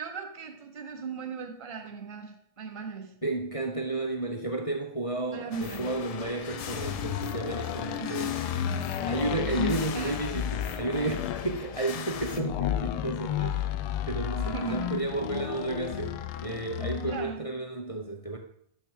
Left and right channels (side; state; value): right; late; 1.7 ms